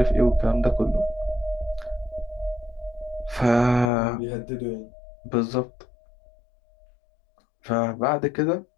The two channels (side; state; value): right; drops out; at 3.9 s